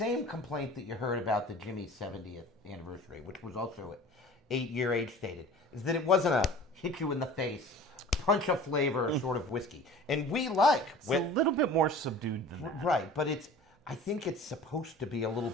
complaint that you heard about the Jimmy's 70th anniversary, which was also 8-year age stated, is that it wasn't a hit you in the face, punch of flavor sort of whiskey. And we like it's a little bit more subdued than that. right, but I think it's supposed to be a little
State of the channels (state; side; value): normal; both; correlation 0.42